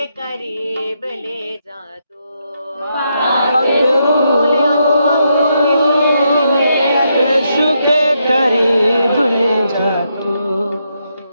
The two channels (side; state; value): both; inverted; correlation -0.80